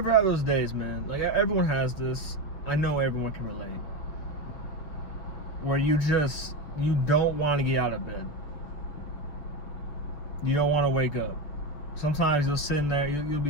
have those days, man? Like, everyone has this. I know everyone can relate. Where you don't want to get out of bed. You don't want to wake up. Sometimes you'll sit in there,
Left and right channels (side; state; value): right; late; 6.8 ms